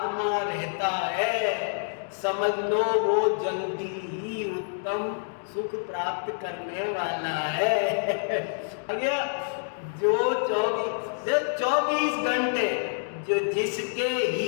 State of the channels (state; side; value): silent; right; digital silence